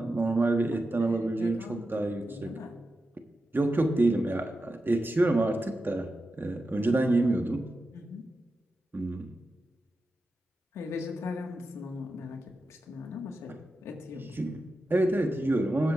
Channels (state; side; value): normal; both; correlation 0.90